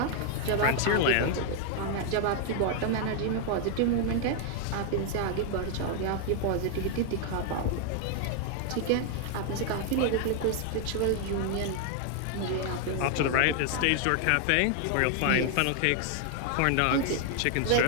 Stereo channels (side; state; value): both; different; correlation 0.00